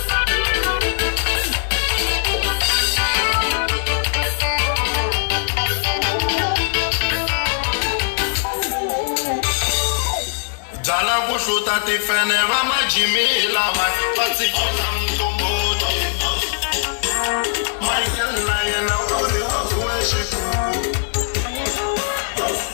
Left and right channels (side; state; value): right; silent; digital silence